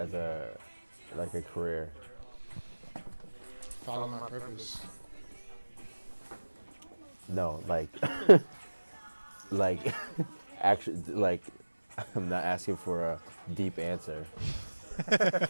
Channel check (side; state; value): both; inverted; correlation -1.00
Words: like a career? Follow my purpose. No, like like actually like I'm not asking for a deep answer.